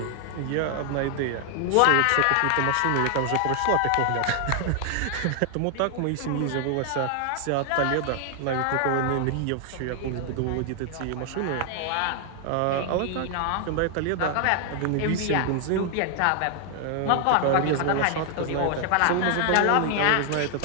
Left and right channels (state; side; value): different; both; correlation 0.00